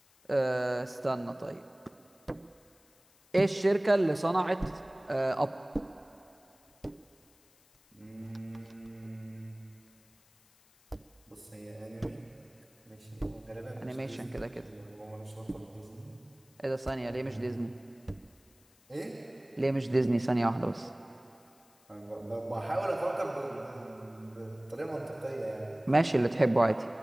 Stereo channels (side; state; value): left; noise; hiss, 30 dB below the sound